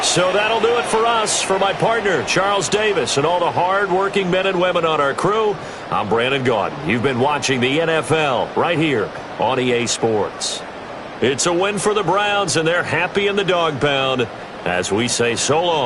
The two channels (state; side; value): identical; both; correlation 1.00